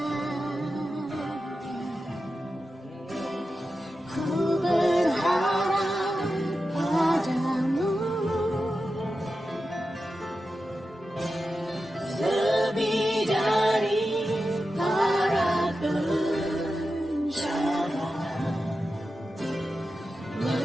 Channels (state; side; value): normal; both; correlation 0.91